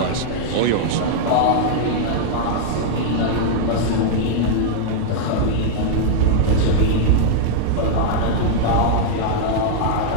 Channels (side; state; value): both; different; correlation -0.01